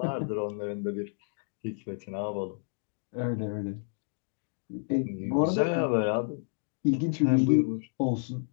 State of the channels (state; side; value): silent; right; digital silence